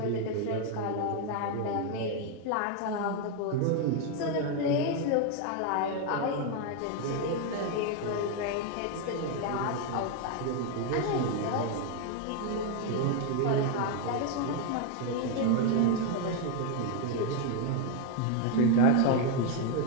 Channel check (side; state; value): both; different; correlation 0.01